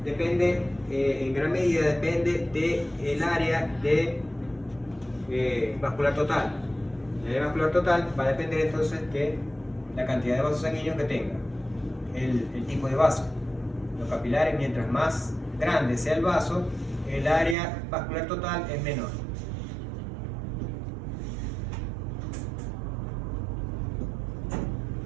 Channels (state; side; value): drops out; left; at 17.6 s